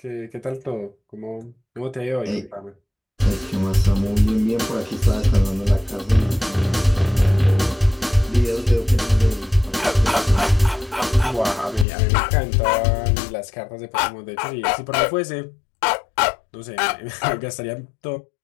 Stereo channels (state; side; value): drops out; right; at 11.9 s